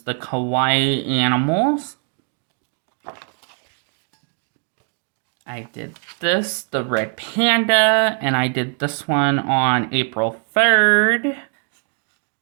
the kawaii animals. I did this, the red panda, and I did this one on April 3rd.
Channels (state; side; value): quieter; left; 39.4 dB